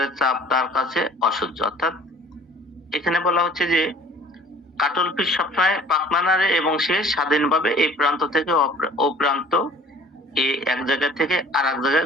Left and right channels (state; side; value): normal; both; correlation 0.51